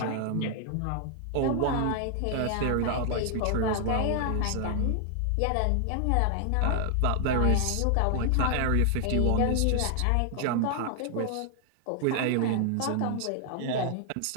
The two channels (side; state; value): both; different; correlation 0.00